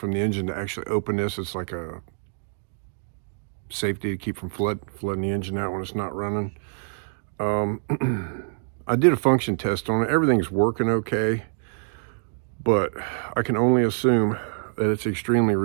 the engine to actually open this. It's like a safety to keep from flooding the engine out when it's not running. I did a function test on it. Everything's working okay, but I can only assume that it's extremely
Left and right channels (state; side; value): silent; left; digital silence